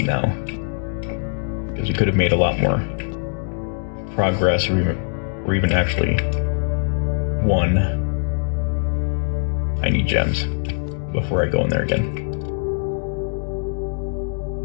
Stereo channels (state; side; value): silent; right; digital silence